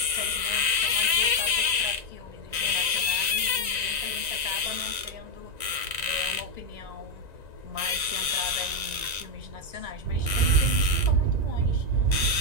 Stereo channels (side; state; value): left; late; 1.9 ms